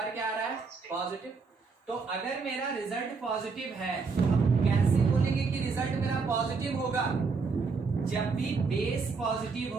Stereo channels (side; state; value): left; quieter; 4.7 dB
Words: क्या आ रहा है, पॉजिटिव। तो अगर मेरा रिजल्ट पॉजिटिव है तो हम कैसे बोलेंगे कि रिजल्ट मेरा पॉजिटिव होगा, जब भी बेस पॉजिटिव